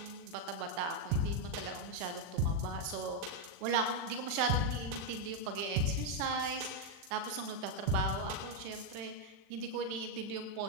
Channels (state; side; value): late; left; 40 ms